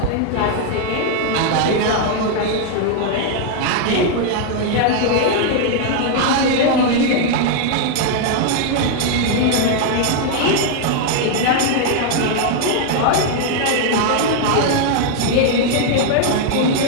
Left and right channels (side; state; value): both; different; correlation 0.00